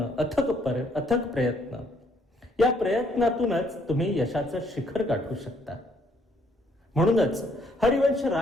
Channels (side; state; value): both; normal; correlation 0.67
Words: अथक प्रयत्न, या प्रयत्नातूनच तुम्ही यशाचं शिखर गाठू शकता. म्हणूनच हरिवंश